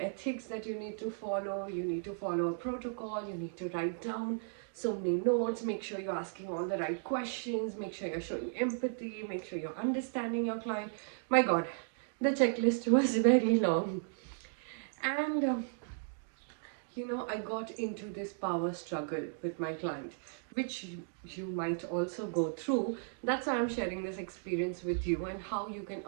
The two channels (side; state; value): left; silent; digital silence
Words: ethics that you need to follow. You need to follow a protocol, you need to write down so many notes, make sure you're asking all the right questions, make sure you're showing empathy, make sure you're understanding your client. My God, the checklist was very long. And I got into this power struggle with my client, which you might also go through. That's why I'm sharing this experience with you and how you can